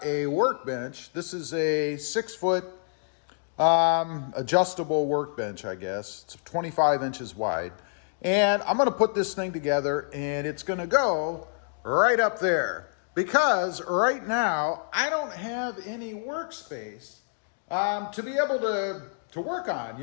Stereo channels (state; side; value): silent; right; digital silence